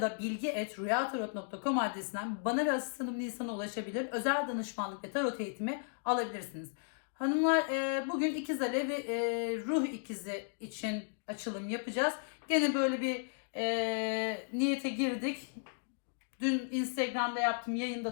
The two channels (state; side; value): silent; right; digital silence